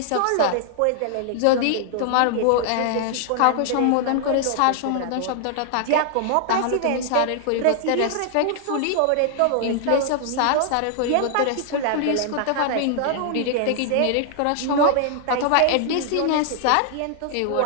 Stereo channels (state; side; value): different; both; correlation 0.00